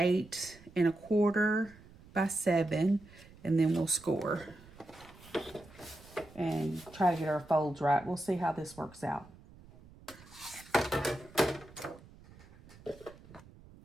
1/4 by 7, and then we'll score and try to get our folds right. We'll see how this works out.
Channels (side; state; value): right; noise; rumble, 22 dB below the sound